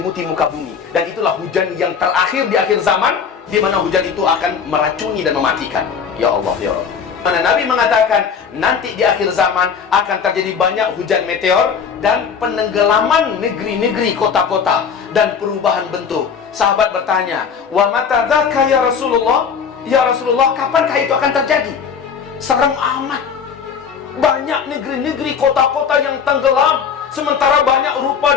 muka bumi. Dan itulah hujan yang terakhir di akhir zaman, di mana hujan itu akan meracuni dan mematikan. Ya Allah, ya Allah. Mana Nabi mengatakan nanti di akhir zaman akan terjadi banyak hujan meteor dan penenggelaman negeri-negeri, kota-kota, dan perubahan bentuk. Sahabat bertanya, "Wa mata dzaka ya Rasulullah?" Ya Rasulullah, kapankah itu akan terjadi? Serem amat. Banyak negeri-negeri, kota-kota yang tenggelam, sementara banyak rupa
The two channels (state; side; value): quieter; right; 6.6 dB